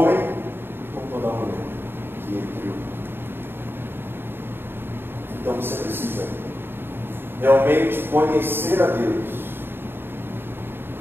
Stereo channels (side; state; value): left; late; 0.10 ms